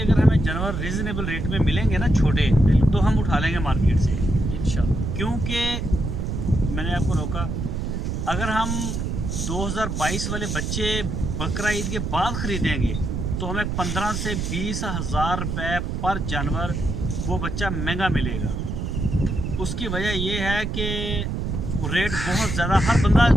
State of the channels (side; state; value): right; noise; rumble, 2 dB below the sound